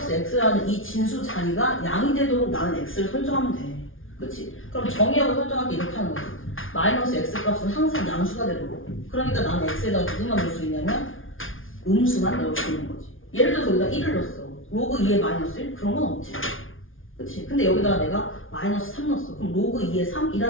x라는 이 진수 자리가 양이 되도록 나는 x를 설정하면 돼. 그치? 그럼 정의역을 설정할 때 이렇게 하는 거지. 마이너스 x 값은 항상 양수가 되도록. 그러니까 나는 x에다가 누구만 넣을 수 있냐면 음수만 넣을 수 있는 거지. 예를 들어서 여기다 1을 넣었어. 로그 2의 마이너스 1? 그런 건 없지. 그치? 근데 여기다가 내가 마이너스 3 넣었어. 그럼 로그 2의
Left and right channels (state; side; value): late; right; 0.58 ms